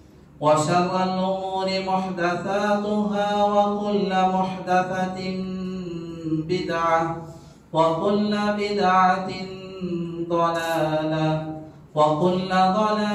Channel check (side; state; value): both; identical; correlation 1.00